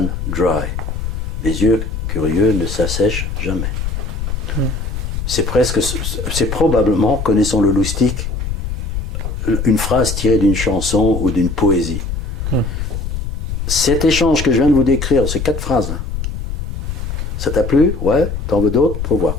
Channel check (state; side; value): noise; left; rumble, 4 dB below the sound